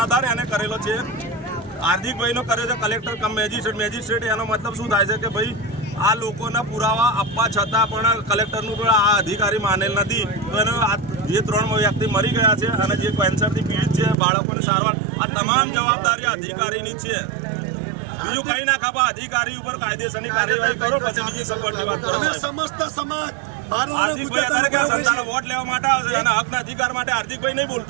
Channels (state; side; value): drops out; left; at 14.2 s